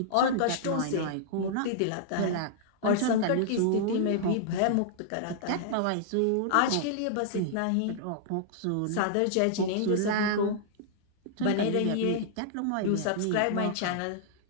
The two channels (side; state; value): both; different; correlation -0.01